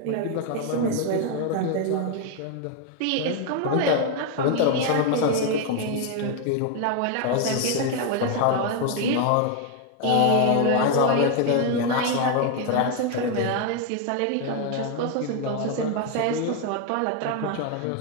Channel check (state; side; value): different; both; correlation 0.01